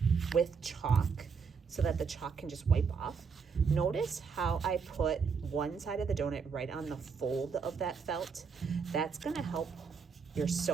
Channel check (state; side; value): quieter; left; 5.7 dB